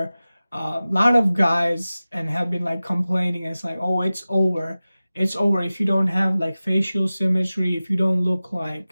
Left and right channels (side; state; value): both; inverted; correlation -0.96